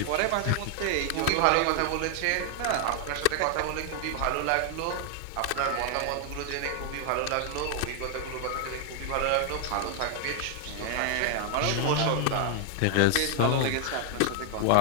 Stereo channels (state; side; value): different; both; correlation 0.00